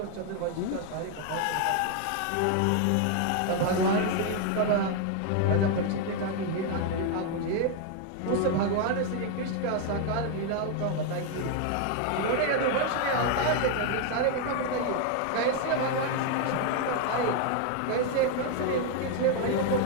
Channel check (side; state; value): both; different; correlation 0.01